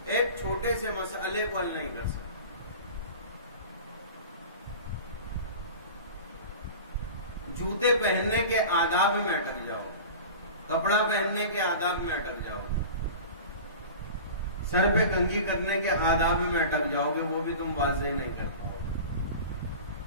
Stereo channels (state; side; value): inverted; both; correlation -0.36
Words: ایک چھوٹے سے مسئلے کو حل نہیں کر سکتے. جوتے پہننے کے آداب میں اٹک جاؤ، کپڑا پہننے کے آداب میں اٹک جاؤ، سر پہ کنگھی کرنے کے آداب میں اٹک جاؤ گے، وہ بھی تم واضح نہیں کر پاؤ.